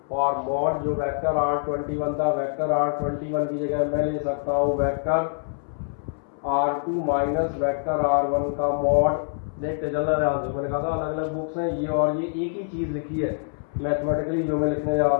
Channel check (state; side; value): silent; right; 62 dB below the other